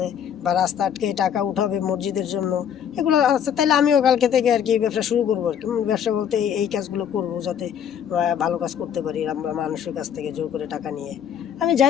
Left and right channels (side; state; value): right; quieter; 8.7 dB